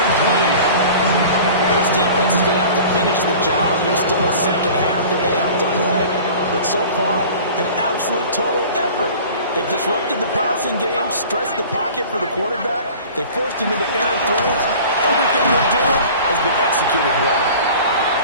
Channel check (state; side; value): inverted; both; correlation -0.42